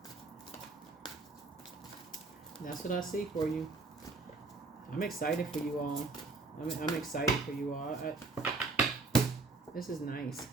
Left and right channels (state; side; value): quieter; left; 3.7 dB